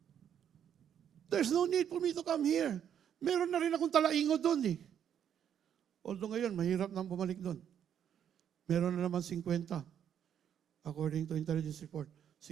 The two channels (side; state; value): left; quieter; 9.1 dB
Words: There's no need for me to come here. Meron na rin akong talaingo doon eh. Although ngayon, mahirap nang bumalik doon. Meron na naman 50. According to intelligence report.